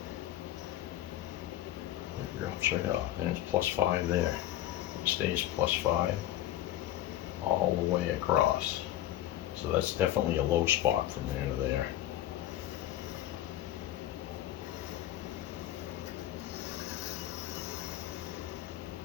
It drops right off, and it's +5 there. It stays +5 all the way across. So that's definitely a low spot from there to there.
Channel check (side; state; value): right; quieter; 13.2 dB